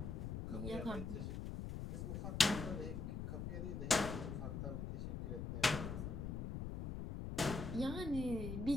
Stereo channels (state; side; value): noise; left; rumble, 4 dB below the sound